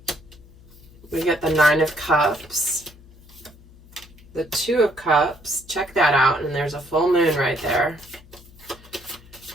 We get the Nine of Cups, the Two of Cups. Check that out, and there's a full moon right there.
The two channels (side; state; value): left; noise; hum, 23 dB below the sound